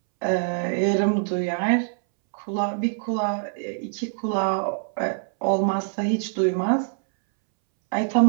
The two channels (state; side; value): silent; left; 62 dB below the other